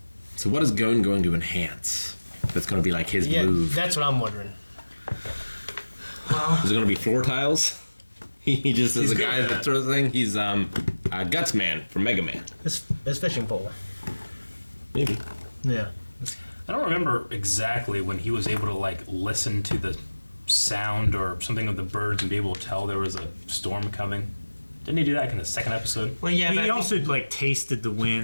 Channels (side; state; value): both; inverted; correlation -1.00